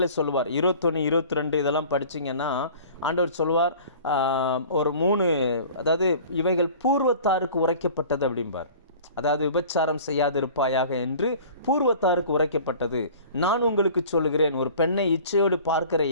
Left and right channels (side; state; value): both; inverted; correlation -0.44